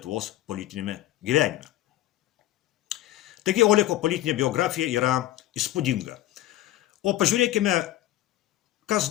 politinėme gyvenime. Taigi Oleko politinė biografija yra įspūdinga. O pažiūrėkime, kas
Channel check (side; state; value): right; quieter; 14.7 dB